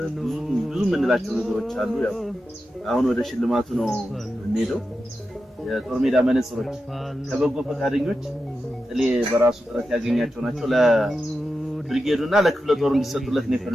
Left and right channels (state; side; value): normal; both; correlation 0.90